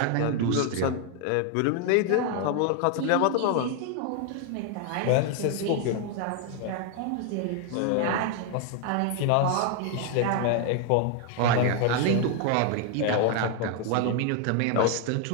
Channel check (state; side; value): different; both; correlation 0.01